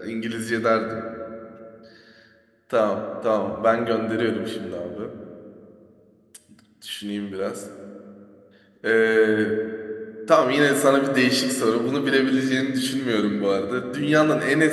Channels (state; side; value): identical; both; correlation 1.00